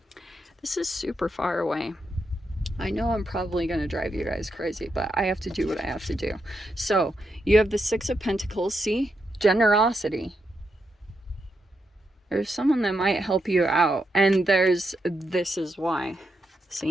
This is super far away. I know I'm probably going to drive you guys crazy, but I have to do what I have to do. So, you have the Six of Pentacles. See? Generosity. There's someone that might help you out. And there's, this is why.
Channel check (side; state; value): both; normal; correlation 0.83